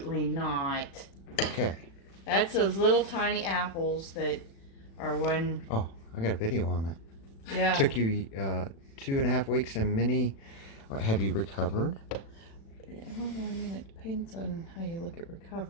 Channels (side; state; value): right; late; 36 ms